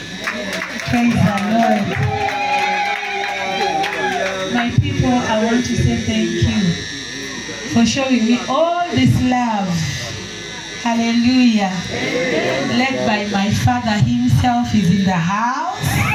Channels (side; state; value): both; identical; correlation 1.00